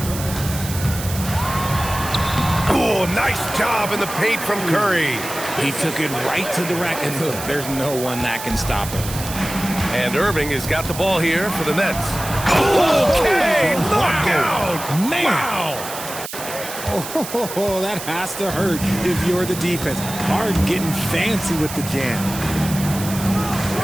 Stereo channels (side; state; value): right; noise; hiss, 9 dB below the sound